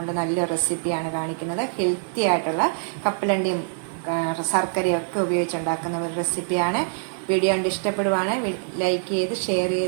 നല്ലൊരു റെസിപ്പിയാണ് കാണിക്കുന്നത്. ഹെൽത്തി ആയിട്ടുള്ള കപ്പലണ്ടിയും ശർക്കരയും ഒക്കെ ഉപയോഗിച്ചുണ്ടാക്കുന്ന ഒരു റെസിപ്പിയാണ്. വീഡിയോ കണ്ട് ഇഷ്ടപ്പെടുവാണ് ലൈക്ക് ചെയ്ത് ഷെയർ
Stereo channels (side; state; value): left; silent; 60 dB below the other